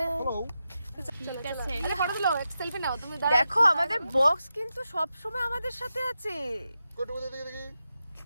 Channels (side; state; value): both; inverted; correlation -0.89